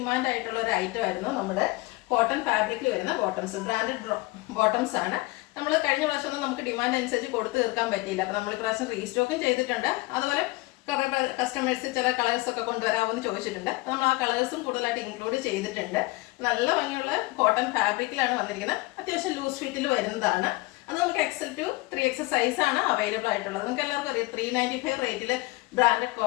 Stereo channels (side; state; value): right; quieter; 22.4 dB